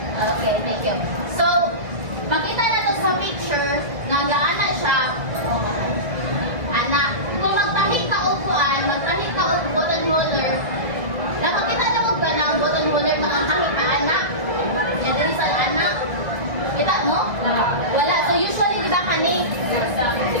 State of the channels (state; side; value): late; left; 1.8 ms